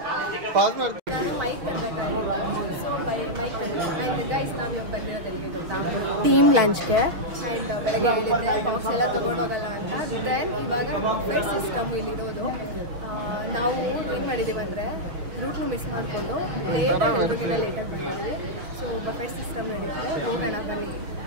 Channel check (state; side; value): late; left; 6.5 ms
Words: ನಾನು ಮೈಕ್ ತರಬೇಕಾಗಿತ್ತು. ಸೊ ಮೈಕ್ ಆ್ಯಂಡ್ ಗೈಸ್ ನಾವು ಇವಾಗ ಬಂದಿರೋದೆಲ್ಲಿಗೆ ಗೊತ್ತಾ? ಟೀಮ್ ಲಂಚ್ಗೆ. ಆ್ಯಂಡ್ ಬೆಳಗ್ಗೆ ಹೇಳಿದ್ದೆ ಬಾಕ್ಸ್ ಎಲ್ಲ ತೊಗೊಂಡೋಗಲ್ಲ ಅಂತ. ದೆನ್ ಇವಾಗ ಬಫೆಟ್ ಸಿಸ್ಟಮ್ ಇಲ್ಲಿರೋದು. ನಾವು ಏನು ಮಾಡಿದ್ದೀವಿ ಅಂದರೆ ರೂಟ್ನು ಮಿಸ್ ಮಾಡಿಕೊಂಡು ಲೇಟಾಗಿ ಬಂದಿದ್ದೀವಿ. ಸೊ ಬಫೆಟ್ ಸಿಸ್ಟಮ್ ನಡೀತದೆ, ಹೋಗೋಣ ಬನ್ನಿ.